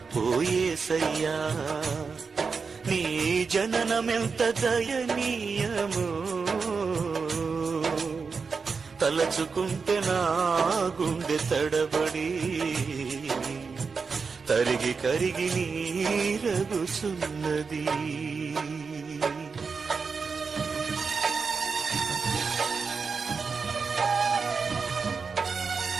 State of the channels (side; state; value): left; quieter; 5.1 dB